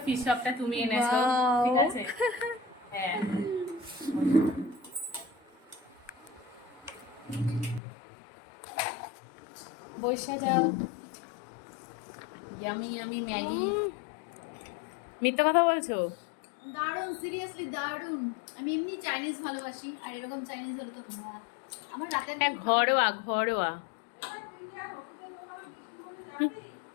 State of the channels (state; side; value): drops out; right; at 7.8 s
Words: ফিশ চপটা তুমি এনেছো, ঠিক আছে। হ্যাঁ বসে যাও। Yummy yummy Maggi. মিথ্যা কথা বলছো? দারুণ, সিরিয়াসলি দারুণ। আমি এমনি চাইনিজ ভালোবাসি, আর এরকম চাইনিজ হলে তো আমার রাতের হ্যাঁ, ঘরোয়া ঘরোয়া।